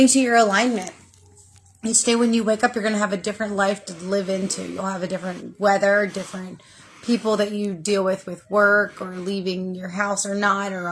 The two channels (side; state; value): both; identical; correlation 1.00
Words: to your alignment. Each day when you wake up, you're going to have a different life to live into. You'll have a different weather, different people that you deal with work, or leaving your house or not, or